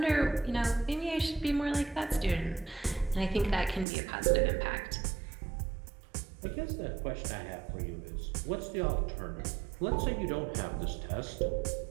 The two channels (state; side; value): drops out; left; at 3.9 s